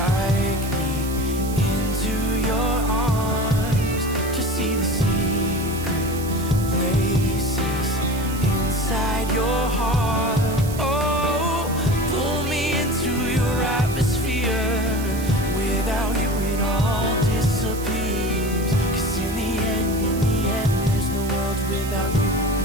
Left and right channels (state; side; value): noise; right; hiss, 13 dB below the sound